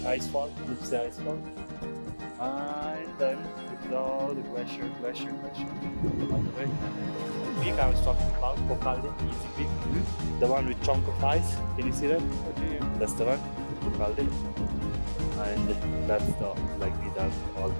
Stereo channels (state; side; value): inverted; both; correlation -1.00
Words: ice fall, Lobuche ice fall. And then it's all the glacier all the way. The peak I was talking about, Kokalde, easy peak. The one with chunk of ice. Can you see that? Okay. That's the one, Kokalde. And that's the like these are all